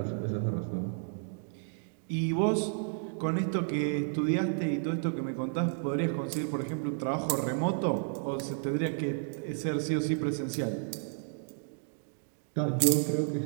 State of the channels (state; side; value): silent; left; digital silence